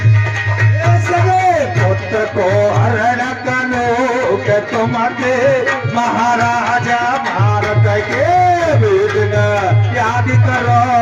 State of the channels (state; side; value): identical; both; correlation 1.00